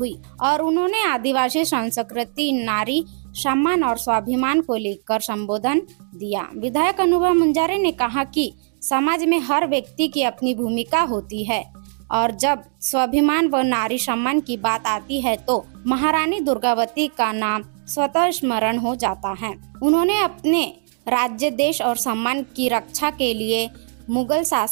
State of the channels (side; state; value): left; silent; 60 dB below the other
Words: और उन्होंने आदिवासी संस्कृति, नारी सम्मान और स्वाभिमान को लेकर संबोधन दिया। विधायक अनुभा मुंजारे ने कहा कि समाज में हर व्यक्ति की अपनी भूमिका होती है और जब स्वाभिमान व नारी सम्मान की बात आती है तो महारानी दुर्गावती का नाम स्वतः स्मरण हो जाता है। उन्होंने अपने राज्य, देश और सम्मान की रक्षा के लिए मुगल